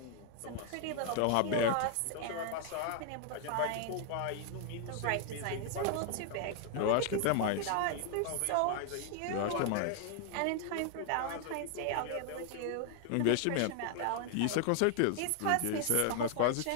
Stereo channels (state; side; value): different; both; correlation 0.00